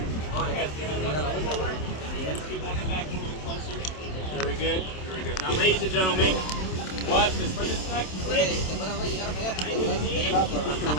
Very good, very good. Now, ladies and gentlemen, watch this. For this next trick, I'm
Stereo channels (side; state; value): right; late; 27 ms